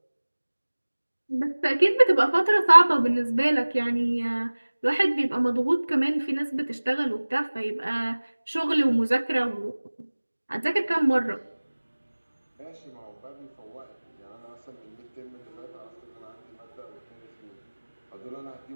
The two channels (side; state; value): both; inverted; correlation -1.00